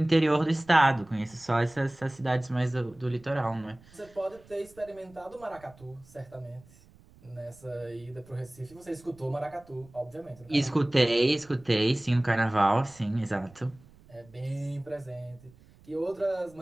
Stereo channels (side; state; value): right; noise; rumble, 25 dB below the sound